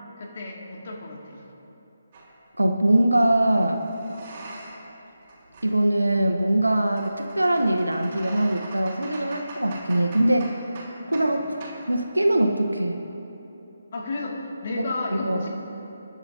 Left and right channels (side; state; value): both; inverted; correlation -0.93